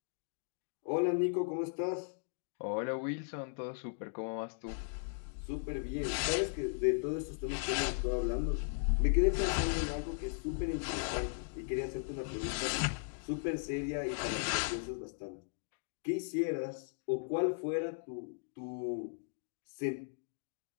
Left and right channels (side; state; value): right; silent; digital silence